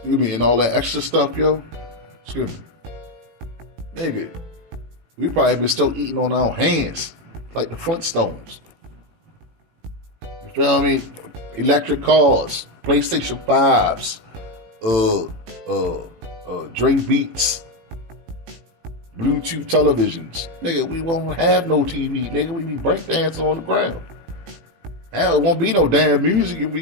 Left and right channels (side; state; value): left; late; 18 ms